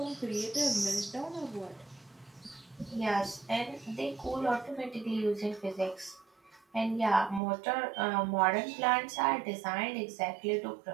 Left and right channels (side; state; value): left; drops out; at 7.4 s